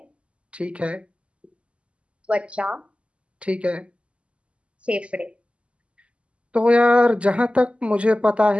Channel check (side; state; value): left; late; 0.057 ms